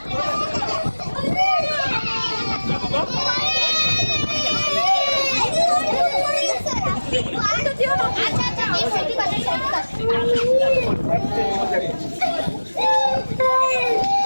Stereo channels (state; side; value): inverted; both; correlation -1.00